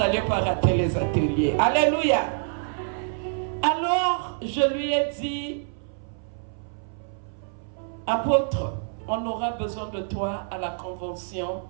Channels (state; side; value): silent; left; 61 dB below the other